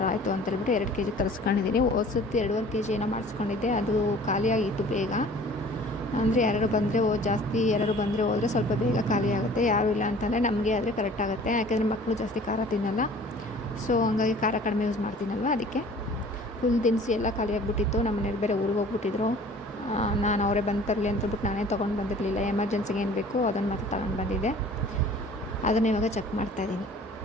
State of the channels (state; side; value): normal; both; correlation 0.48